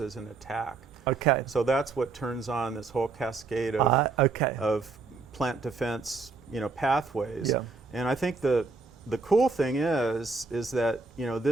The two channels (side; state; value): left; quieter; 4.2 dB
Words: an attack. Okay. So that's what turns on this whole cascade of Okay. of plant defense, pathways. Yeah. And I think the cool thing is that